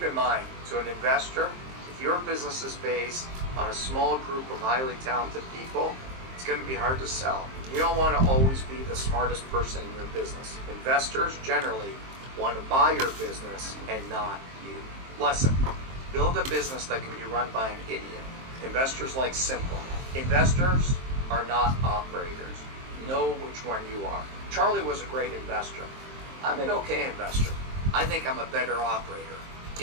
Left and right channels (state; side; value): late; left; 23 ms